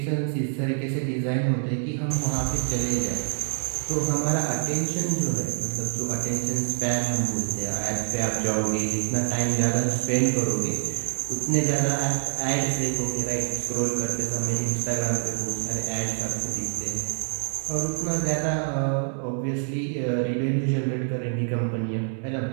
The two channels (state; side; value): silent; left; 61 dB below the other